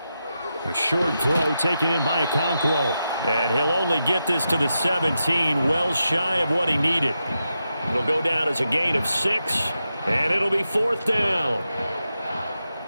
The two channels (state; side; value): inverted; both; correlation -0.88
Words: A short throw taken in by Okonkwo. And he'll only get this to the 17, well shy of what he needed. It'll go down as a gain of 6, and it'll be 4th down.